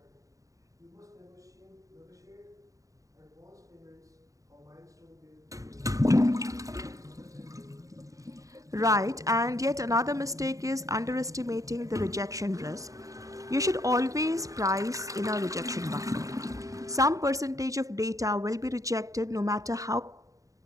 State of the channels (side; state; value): left; late; 0.16 ms